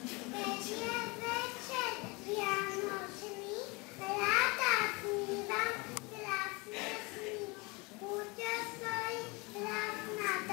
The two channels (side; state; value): right; quieter; 27.1 dB